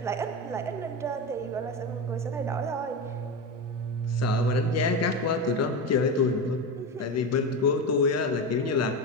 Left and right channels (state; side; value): normal; both; correlation 0.19